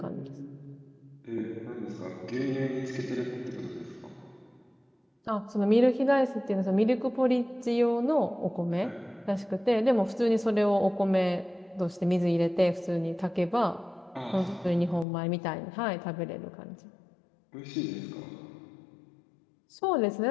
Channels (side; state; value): right; drops out; at 15.1 s